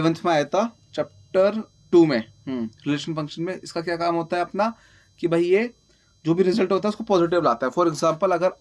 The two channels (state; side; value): identical; both; correlation 1.00